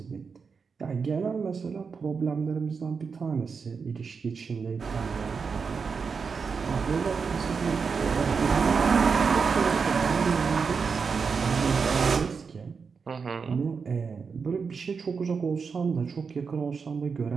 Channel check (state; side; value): quieter; left; 5.5 dB